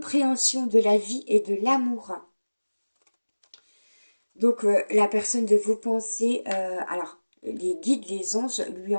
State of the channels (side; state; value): both; inverted; correlation -1.00